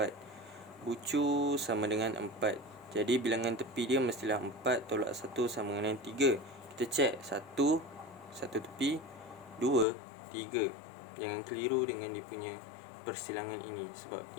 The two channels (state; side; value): drops out; right; at 9.9 s